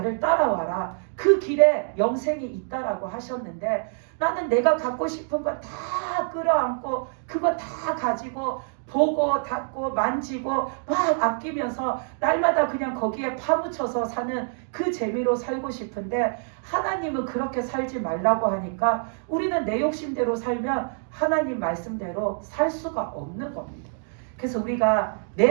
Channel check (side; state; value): left; silent; digital silence